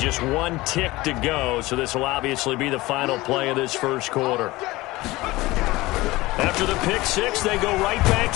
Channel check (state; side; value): quieter; right; 19.7 dB